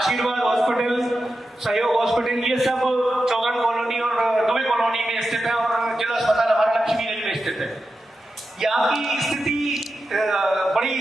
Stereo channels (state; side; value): normal; both; correlation 0.90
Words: हॉस्पिटल, सहयोग हॉस्पिटल, ये सब चौगन कॉलोनी और दुबे कॉलोनी में स्थित है, और जिला अस्पताल हमारा लक्ष्मीगंज में स्थित है। यहाँ की स्थिति